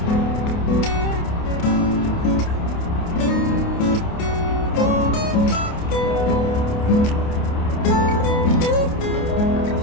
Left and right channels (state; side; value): late; right; 28 ms